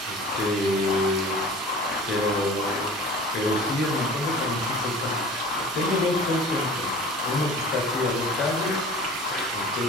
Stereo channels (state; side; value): normal; both; correlation 0.41